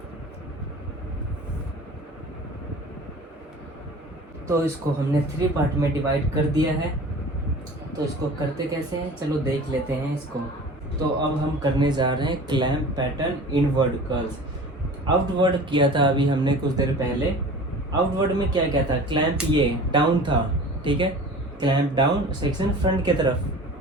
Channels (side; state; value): both; normal; correlation 0.40